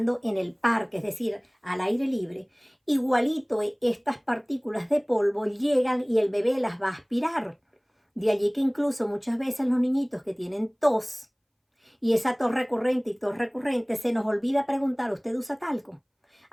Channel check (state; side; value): identical; both; correlation 1.00